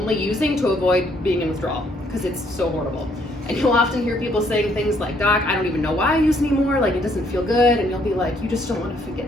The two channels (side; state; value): both; normal; correlation 0.67